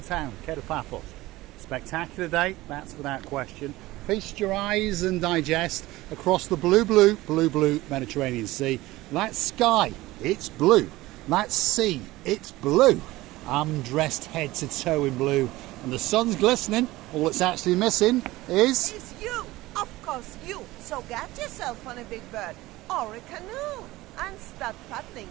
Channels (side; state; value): left; quieter; 18.4 dB